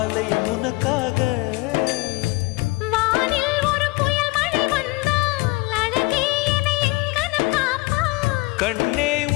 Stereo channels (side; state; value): right; quieter; 23.8 dB